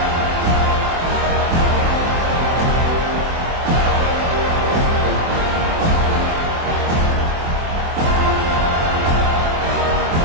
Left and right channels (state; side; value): late; left; 24 ms